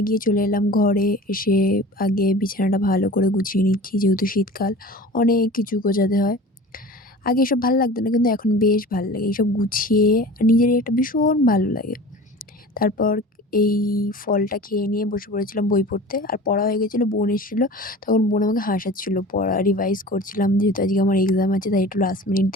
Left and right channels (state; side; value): normal; both; correlation 0.39